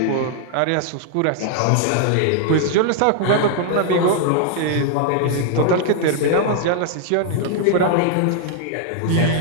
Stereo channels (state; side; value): different; both; correlation 0.00